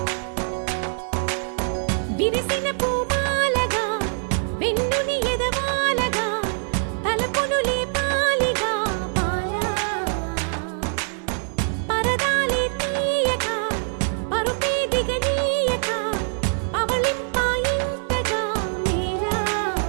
విరిసిన పూమాలగా వెన్నుని ఎదవాలగా తలపును లేపాలిగా పరదాలే తీయక పరుపే దిగనీయక అవలింపాయింతగా మేలా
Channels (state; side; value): silent; left; digital silence